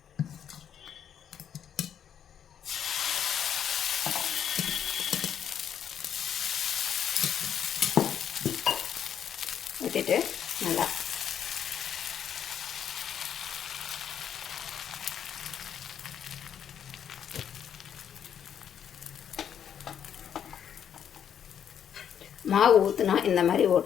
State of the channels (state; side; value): quieter; right; 8.9 dB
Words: ஊற்றிட்டு நல்லா மாவு ஊற்றுனா இந்த மாதிரி